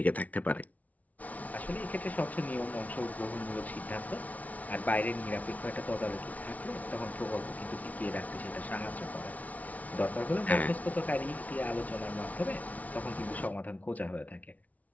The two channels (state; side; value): late; right; 0.071 ms